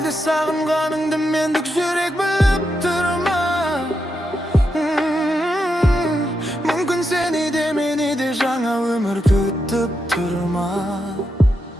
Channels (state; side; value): normal; both; correlation 0.84